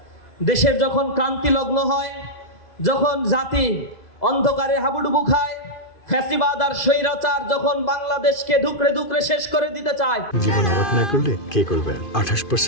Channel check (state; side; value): late; right; 2.0 ms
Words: দেশের যখন ক্রান্তি লগ্ন হয়, যখন জাতি অন্ধকারে হাবুডুবু খায়, ফ্যাসিবাদ আর স্বৈরাচার যখন বাংলাদেশকে ধুকরে ধুকরে শেষ করে দিতে চায়। জীবন অবাক না করলে কে করবে?